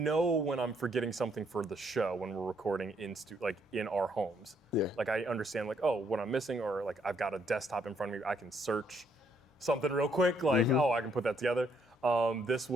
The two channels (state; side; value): normal; both; correlation 0.71